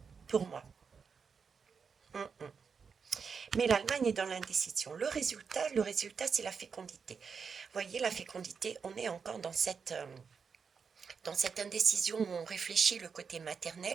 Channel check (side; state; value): left; quieter; 5.9 dB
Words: pour moi. Mais l'Allemagne est dans l'indécision. Le résultat, c'est la fécondité. Vous voyez, la fécondité, on est encore dans cette indécision où on réfléchit le côté